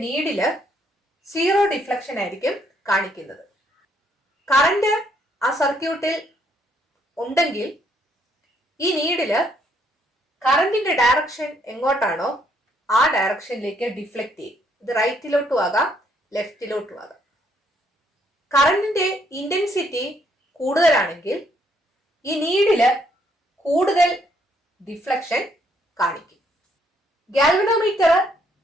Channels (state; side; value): normal; both; correlation 0.70